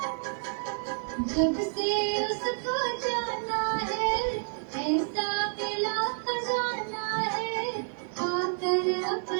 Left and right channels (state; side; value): silent; left; 58 dB below the other